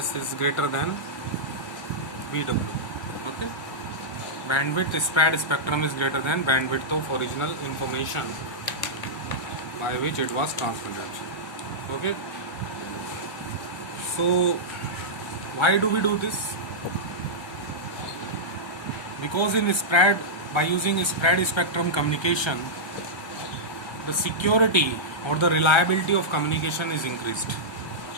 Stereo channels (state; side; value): late; right; 1.3 ms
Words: is greater than BW. Okay, bandwidth spread spectrum is greater than bandwidth of original information by which it was transmitted. Okay, so why do we do this? Because by using spread spectrum communication, the security or the reliability of communication is increased.